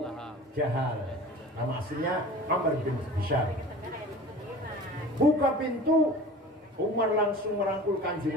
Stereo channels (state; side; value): normal; both; correlation 0.40